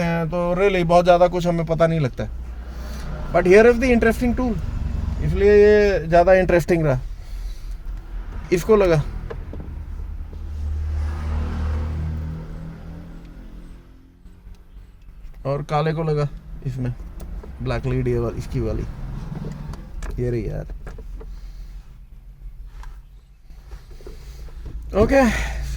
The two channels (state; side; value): identical; both; correlation 1.00